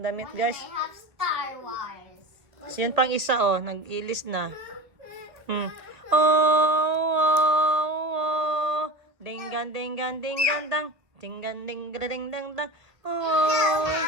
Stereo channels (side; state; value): left; late; 1.8 ms